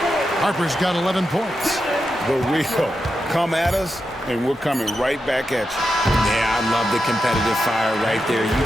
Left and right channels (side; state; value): both; normal; correlation 0.88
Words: Harper's got 11 points. The real. Come at us, and we're coming right back at you. Yeah, I love the competitive fire right there. You